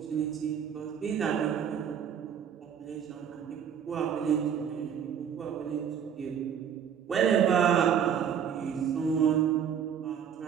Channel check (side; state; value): left; quieter; 8.2 dB